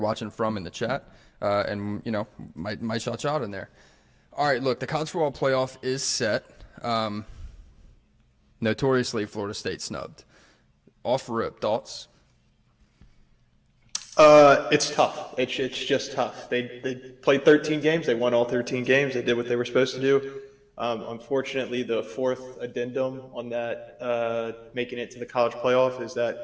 from in the chat, and, you know, might shout you out in there. All right, look, the college football playoff is set. Notoriously, Florida State snubbed. Off rip, thoughts? It's tough. It's just tough. They played 13 games. They won all 13 games. They did what they were supposed to do. Unfortunately, the fourth addendum on that making it to the college playoff is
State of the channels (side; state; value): both; identical; correlation 1.00